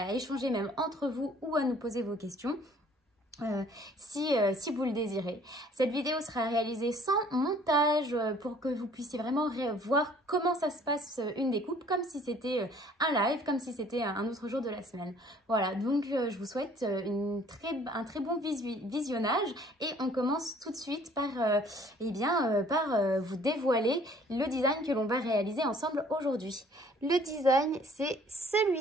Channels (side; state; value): both; normal; correlation 0.56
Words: à échanger même entre vous ou à nous poser vos questions. Si vous le désirez. Cette vidéo sera réalisée sans montage pour que vous puissiez vraiment voir comment ça se passe une découpe, comme si c'était un live, comme si c'était un autre jour de la semaine. Voilà, donc je vous souhaite un très bon visionnage et on commence tout de suite par, vous dévoiler le design que l'on va réaliser ensemble aujourd'hui. Le design, c'est